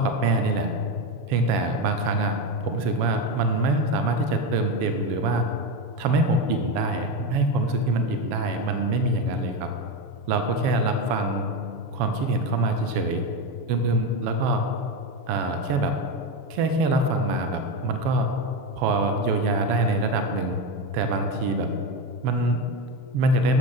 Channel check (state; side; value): late; left; 7.3 ms